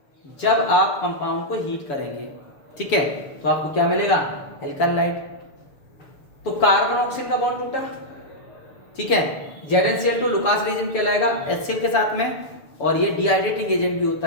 जब आप कंपाउंड को हीट करेंगे, ठीक है। तो आपको क्या मिलेगा, एल्कालाइड। तो कार्बन ऑक्सीजन का बॉन्ड टूटा, ठीक है, ZnCl2 लुकास रिएजेंट कहलाएगा HCl के साथ में, और ये डिहाइड्रेटिंग एजेंट भी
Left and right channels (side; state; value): right; late; 6.8 ms